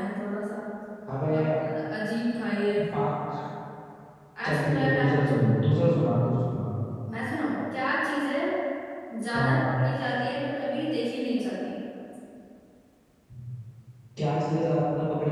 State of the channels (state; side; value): identical; both; correlation 1.00